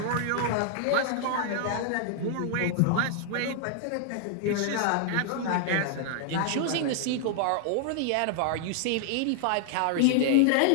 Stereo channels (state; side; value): different; both; correlation 0.00